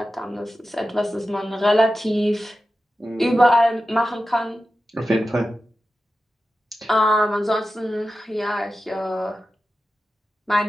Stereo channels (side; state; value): both; normal; correlation 0.93